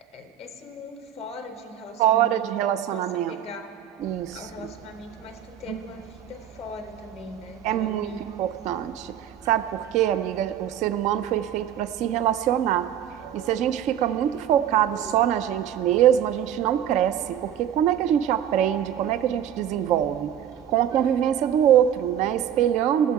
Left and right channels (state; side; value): quieter; left; 10.0 dB